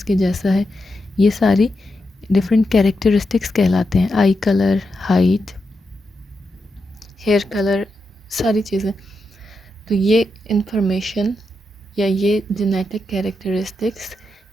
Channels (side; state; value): both; normal; correlation 0.86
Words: के जैसा है। ये सारी डिफरेंट कैरेक्टरिस्टिक्स कहलाते हैं, eye colour, height, hair colour, सारी चीज़ें। तो ये इंफॉर्मेशन या ये जेनेटिक कैरेक्टरिस्टिक्स